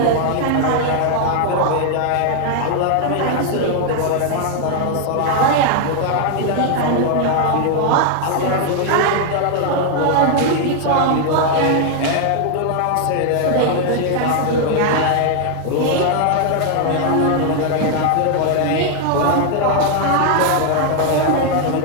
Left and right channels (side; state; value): both; different; correlation 0.00